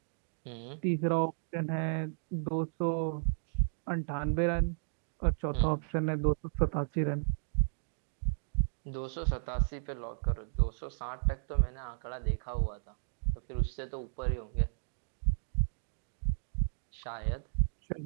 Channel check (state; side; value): silent; left; digital silence